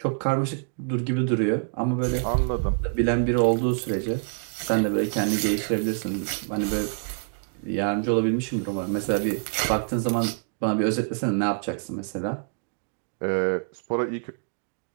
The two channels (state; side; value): silent; left; digital silence